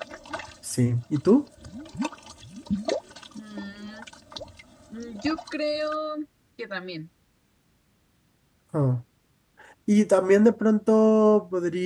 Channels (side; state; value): both; identical; correlation 1.00